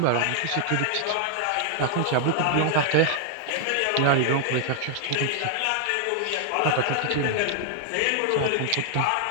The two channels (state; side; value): different; both; correlation 0.00